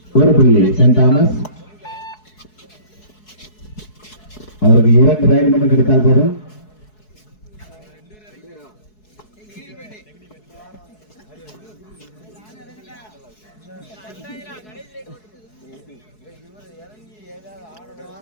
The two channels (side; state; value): right; late; 4.7 ms